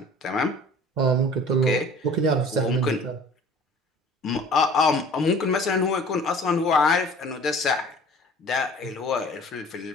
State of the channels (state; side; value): normal; both; correlation 0.46